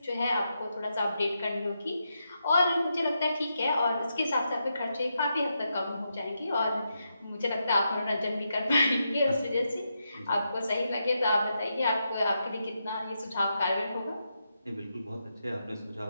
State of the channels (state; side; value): inverted; both; correlation -0.84